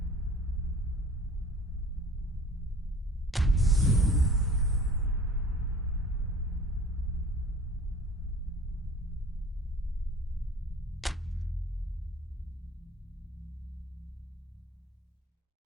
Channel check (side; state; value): both; normal; correlation 0.45